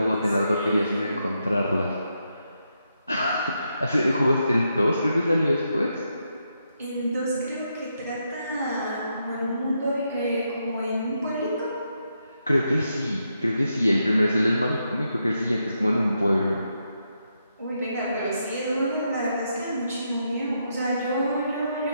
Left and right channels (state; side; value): inverted; both; correlation -0.82